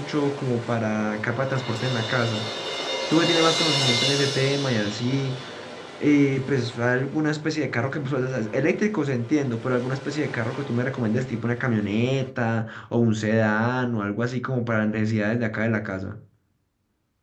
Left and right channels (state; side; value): identical; both; correlation 1.00